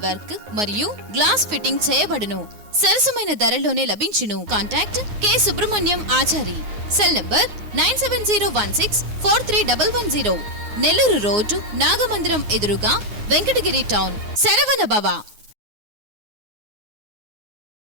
వర్క్ మరియు గ్లాస్ ఫిట్టింగ్ చేయబడును. సరసమైన ధరలోనే లభించును. Contact K Subrahmanyam Achari. Cell number 9706431110. Nellore road, Nagamandiram ఎదురుగా, వెంకటగిరి టౌన్. శరవణ భవ.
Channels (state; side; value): late; left; 9.6 ms